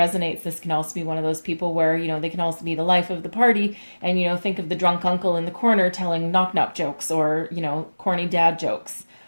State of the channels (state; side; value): inverted; both; correlation -1.00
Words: this can also be one of those people where, they can also be the life of the party and, think of the drunk uncle in the corner telling knock-knock jokes or, corny dad jokes.